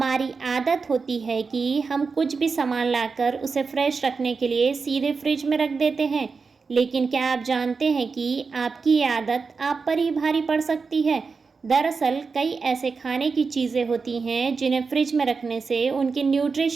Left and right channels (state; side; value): quieter; left; 4.8 dB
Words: आदत होती है कि हम कुछ भी सामान लाकर उसे फ्रेश रखने के लिए सीधे फ्रिज में रख देते हैं, लेकिन क्या आप जानते हैं कि आपकी ये आदत आप पर ही भारी पड़ सकती है। दरअसल कई ऐसे खाने की चीज़ें होती हैं जिन्हें फ्रिज में रखने से उनकी